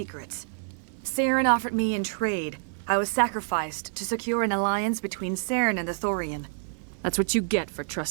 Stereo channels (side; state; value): left; silent; 59 dB below the other